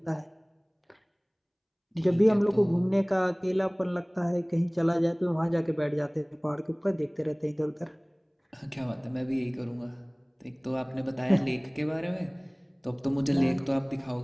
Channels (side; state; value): both; identical; correlation 1.00